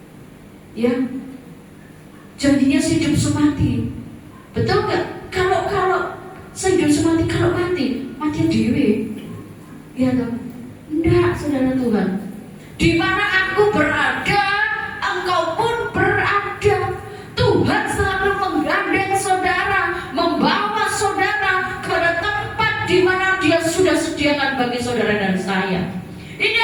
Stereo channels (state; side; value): identical; both; correlation 1.00